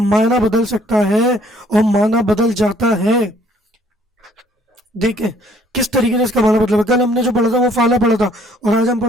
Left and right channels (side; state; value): both; normal; correlation 0.61